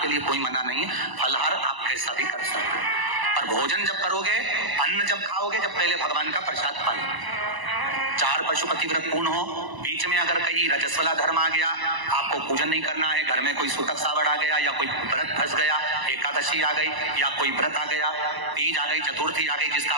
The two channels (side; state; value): left; late; 1.0 ms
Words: के लिए कोई मना नहीं है, फलाहार आप कैसा भी कर सकते हो। पर भोजन जब करोगे, अन्न जब खाओगे, जब पहले भगवान का प्रसाद पालो। 4 पशुपति व्रत पूर्ण हो। बीच में अगर कहीं रजस्वला धर्म आ गया, आपको पूजन नहीं करना है, घर में कोई सूतक सावड़ आ गया, या कोई व्रत फंस गया, एकादशी आ गई, या कोई व्रत आ गया, तीज आ गई, चतुर्थी आ गई, जिसका